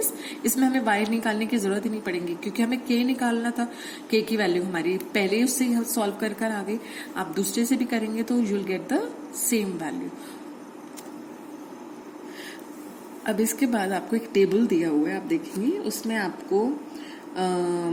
इसमें हमें y निकालने की जरूरत ही नहीं पड़ेगी क्योंकि हमें k निकालना था। k की वैल्यू हमारी पहले उससे हम सॉल्व कर आ गई। आप दूसरे से भी करेंगे तो you will get the same value. अब इसके बाद आपको एक टेबल दिया हुआ है, आप देखेंगे उसमें आपको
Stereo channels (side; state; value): both; identical; correlation 1.00